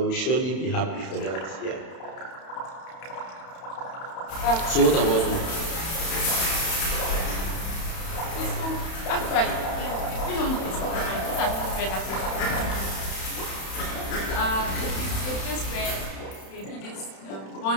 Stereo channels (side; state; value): right; late; 31 ms